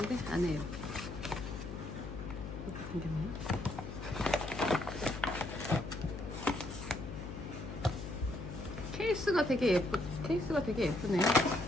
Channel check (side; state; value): left; noise; hum, 9 dB below the sound